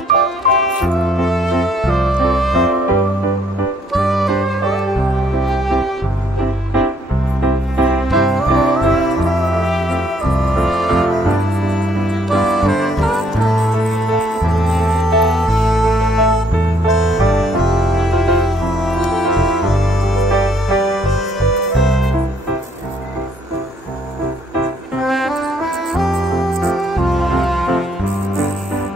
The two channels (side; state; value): both; normal; correlation 0.67